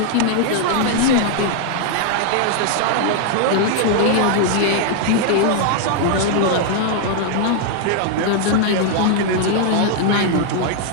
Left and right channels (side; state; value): both; different; correlation 0.00